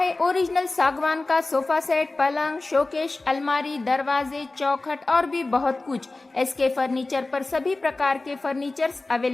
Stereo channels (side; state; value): right; quieter; 3.2 dB